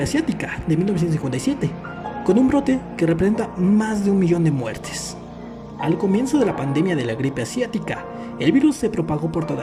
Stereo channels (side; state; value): both; identical; correlation 1.00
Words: asiática de 1957, con un brote que representa más de 1 millón de muertes. Al comienzo de la pandemia de la gripe asiática, el virus se propagó por